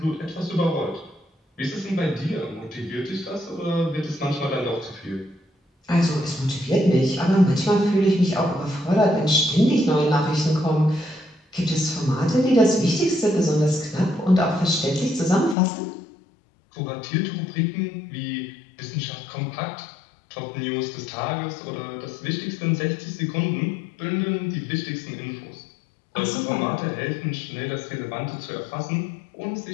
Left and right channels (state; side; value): drops out; right; at 15.6 s